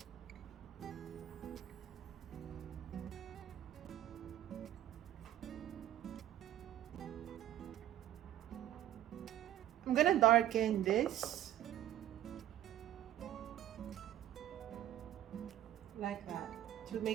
I'm gonna darken this like that to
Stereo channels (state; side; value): quieter; left; 12.6 dB